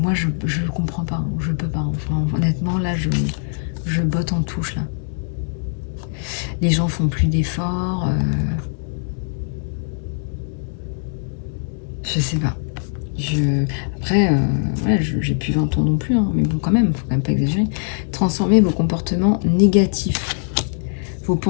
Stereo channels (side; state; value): right; silent; digital silence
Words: je comprends pas, hein, je peux pas. Enfin, honnêtement, là, je botte en touche, là. Les gens font plus d'efforts. Je sais pas. Après, voilà, j'ai plus 20 ans non plus, hein, mais bon, quand même, faut quand même pas exagérer. Transformez vos comportements négatifs. Vos